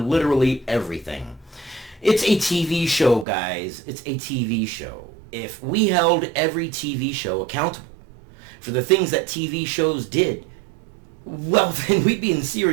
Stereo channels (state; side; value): drops out; left; at 3.2 s